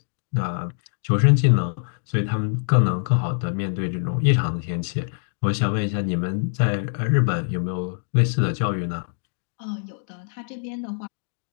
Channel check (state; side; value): silent; right; digital silence